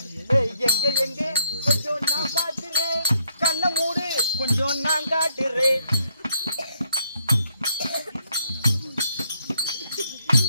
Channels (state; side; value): inverted; both; correlation -0.72